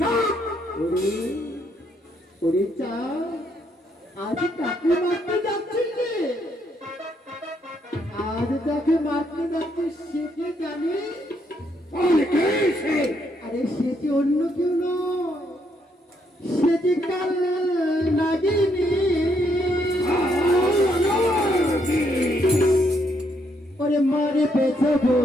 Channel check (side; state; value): both; normal; correlation 0.74